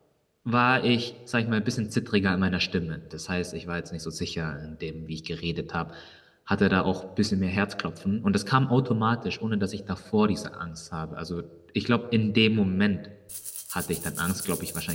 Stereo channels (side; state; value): both; identical; correlation 1.00